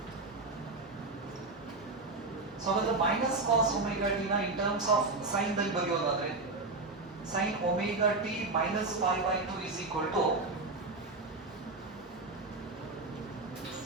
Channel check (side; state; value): left; quieter; 3.4 dB